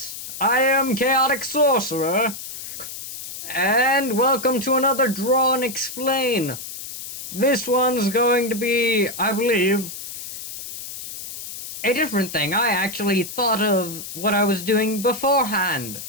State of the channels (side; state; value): left; noise; hiss, 10 dB below the sound